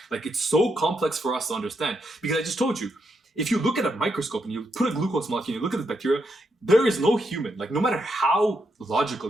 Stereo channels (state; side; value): normal; both; correlation 0.80